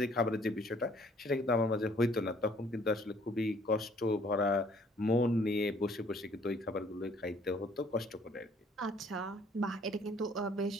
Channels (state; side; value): normal; both; correlation 0.60